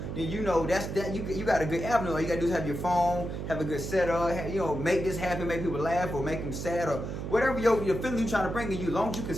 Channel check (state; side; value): noise; right; hum, 5 dB below the sound